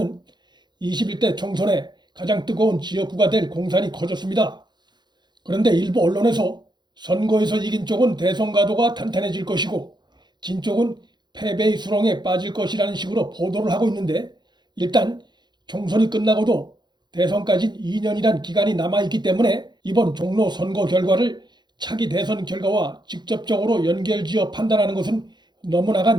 21대 총선의 가장 뜨거운 지역구가 될 공산이 커졌습니다. 그런데 일부 언론에서 선거에서 이긴 쪽은 대선 가도가 탄탄해질 것이고 진 쪽은 패배의 수렁에 빠질 것이라는 식으로 보도를 하고 있는데, 일단 총선이 끝나고도 대선까지 2년이란 기간이 남아있기 때문에 이번 종로 선거 결과를 차기 대선 결과와 직접적으로 연결지어 판단하는 것은 너무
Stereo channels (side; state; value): left; late; 0.21 ms